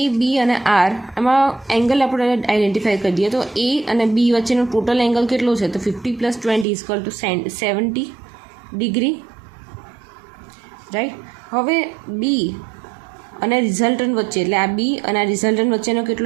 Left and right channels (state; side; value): drops out; left; at 6.7 s